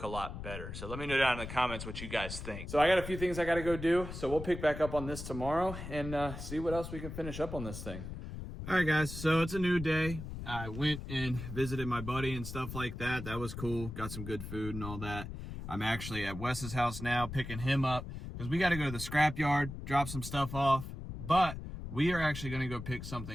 a lot better. So let me know down in the comments what you guys think. So I got a few things I got to go do. So we'll pick back up on this tomorrow and see what else we can finish up on this thing. All right, guys. So it's a new day. I went and visited my buddy and stuff like that. That was cool. Got some good food and all that. I'm actually at Wes's house now picking him up because we got to go to the scrapyard, drop some stuff off. But we are actually going to go pick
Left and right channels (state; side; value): noise; left; rumble, 8 dB below the sound